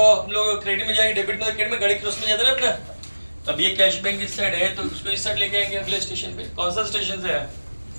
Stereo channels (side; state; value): both; inverted; correlation -1.00